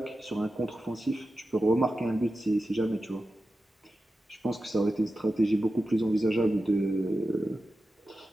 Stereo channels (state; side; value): normal; both; correlation 0.92